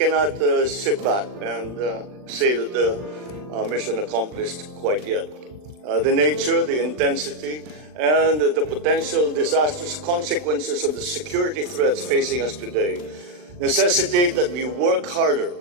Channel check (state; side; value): late; left; 39 ms